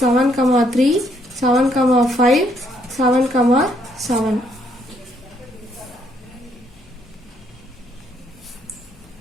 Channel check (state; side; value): normal; both; correlation 0.70